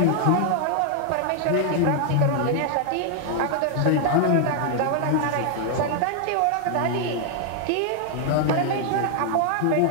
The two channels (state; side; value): different; both; correlation 0.00